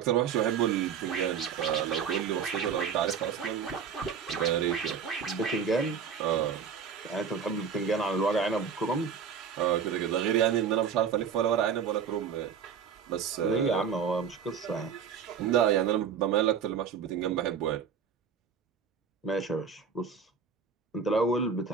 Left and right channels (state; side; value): quieter; left; 6.7 dB